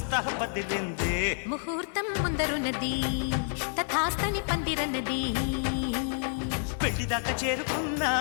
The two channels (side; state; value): right; silent; digital silence